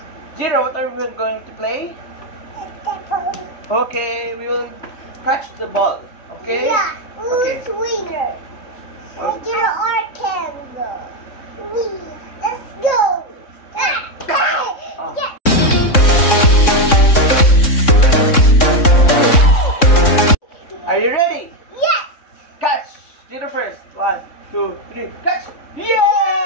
Zero, what are we going to play? Basketball. Okay, we will catch the ball. Okay? Yeah. Who's Okay. winner? Oh. Jiro or Kenzo? Let's go. Oh. Yeah. Are you ready? Yes. Catch! Zero first. 1, 2, 3. Catch!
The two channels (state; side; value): late; right; 3.6 ms